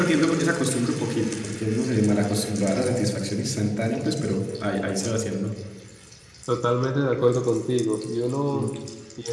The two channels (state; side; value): identical; both; correlation 1.00